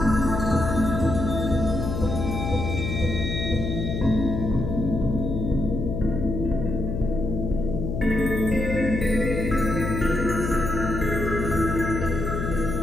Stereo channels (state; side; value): noise; left; hum, 3 dB below the sound